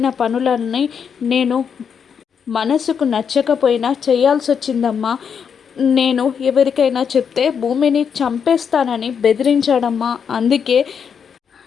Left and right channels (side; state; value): right; quieter; 7.0 dB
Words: పనులన్నీ నేను మనసుకు నచ్చకపోయినా చేయాల్సి వచ్చిందమ్మా. నేను ఎవరికైనా చెప్తే భూమిని చంపేస్తానని బెదిరించాడమ్మా. అందుకే